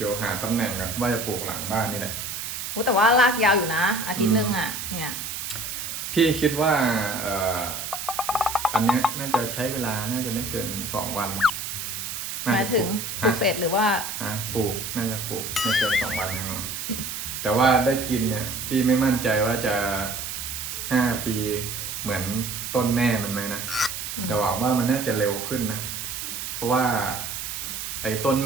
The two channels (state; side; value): noise; right; hiss, 5 dB below the sound